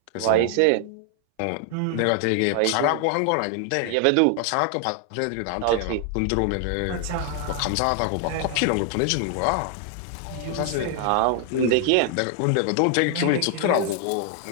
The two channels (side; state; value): both; different; correlation 0.00